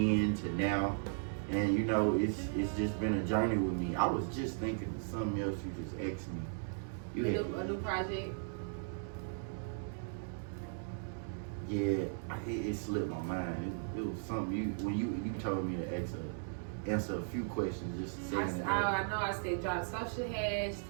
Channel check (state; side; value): silent; left; digital silence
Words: to now. And it's just been a journey with me. I was just thinking of something else you just asked me. A new project? Yeah, it slipped my mind. It was something when you told me to answer a few questions just to say. I know I said drop social tags.